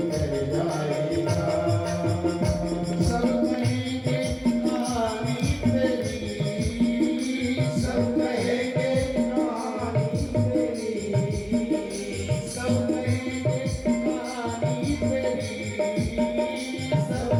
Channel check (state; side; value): identical; both; correlation 1.00